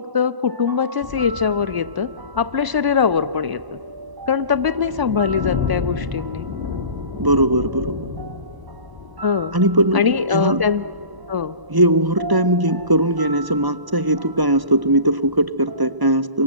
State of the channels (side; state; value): left; late; 1.0 ms